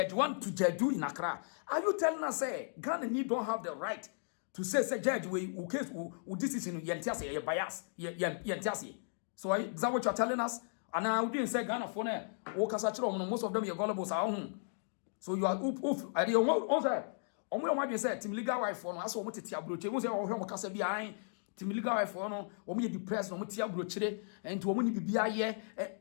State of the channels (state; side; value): silent; right; digital silence